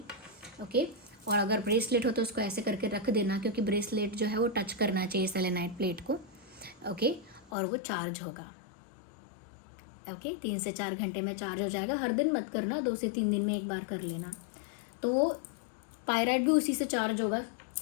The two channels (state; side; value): drops out; right; at 7.5 s